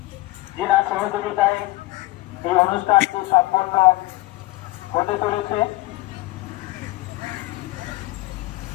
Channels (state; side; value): quieter; right; 19.4 dB